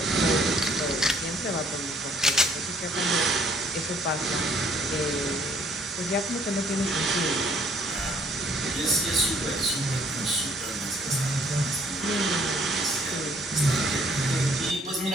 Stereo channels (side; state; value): both; normal; correlation 0.62